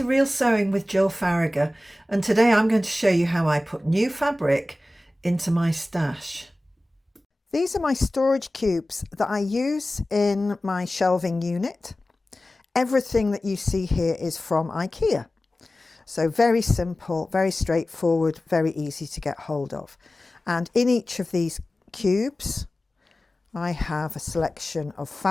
Real Sewing with Gill Faragher, and today I'm going to show you how I put new fabric into my stash. These are my storage cubes that I use in my shelving unit. Everything that you see here is from IKEA. So very simple, very straightforward, very easy to get hold of. And in each of these cubes I have a selection of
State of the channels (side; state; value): both; normal; correlation 0.96